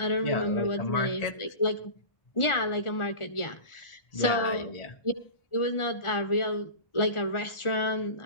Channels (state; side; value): late; right; 1.4 ms